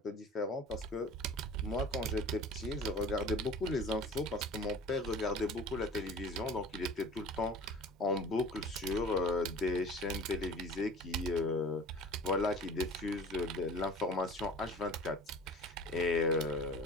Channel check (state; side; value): normal; both; correlation 0.42